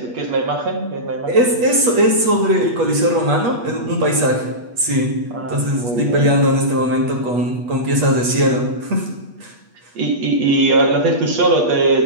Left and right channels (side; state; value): left; late; 8.3 ms